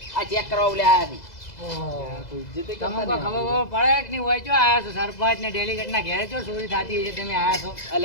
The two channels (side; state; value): right; late; 2.0 ms